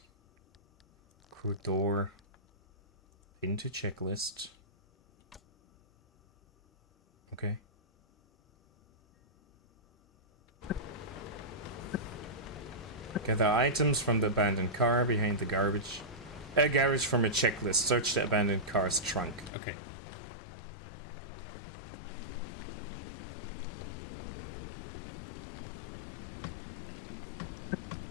Crew door. Into checklist. Okay. Gather items from the abandoned car behind the garbage. Garage from a checklist. Search the abandoned car's trunk. Okay.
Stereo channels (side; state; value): right; drops out; at 19.5 s